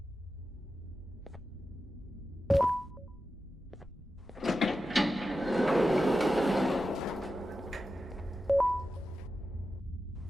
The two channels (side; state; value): both; normal; correlation 0.91